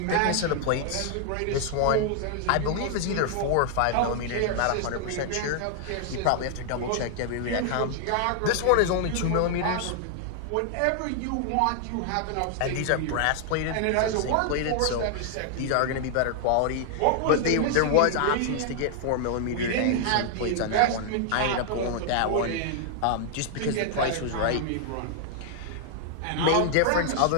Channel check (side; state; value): both; different; correlation -0.01